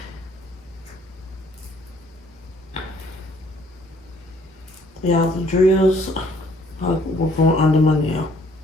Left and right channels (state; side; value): normal; both; correlation 0.61